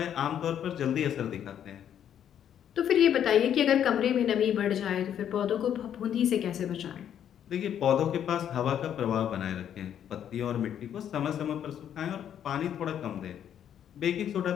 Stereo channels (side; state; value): right; quieter; 9.6 dB